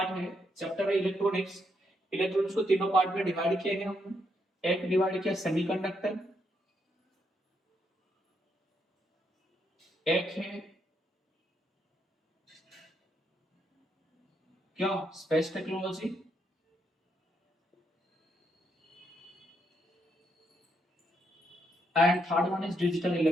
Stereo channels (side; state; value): both; normal; correlation 0.77